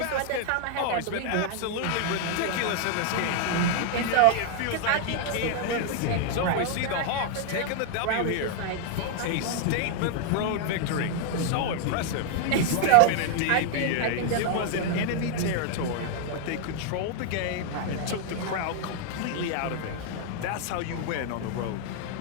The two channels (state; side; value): different; both; correlation 0.00